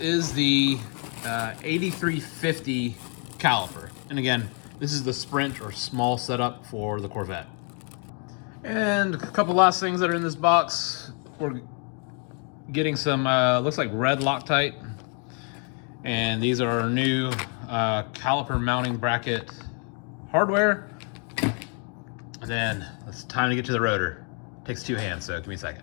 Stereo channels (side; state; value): right; quieter; 39.9 dB